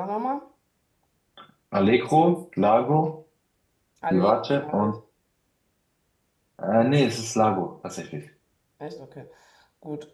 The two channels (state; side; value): identical; both; correlation 1.00